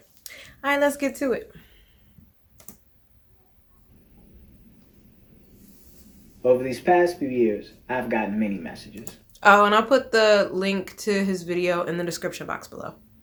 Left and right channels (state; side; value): identical; both; correlation 1.00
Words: right, let's get to it. Over these past few years, I've gotten many messages. Oh, and I'll put the link to his video in the description box below.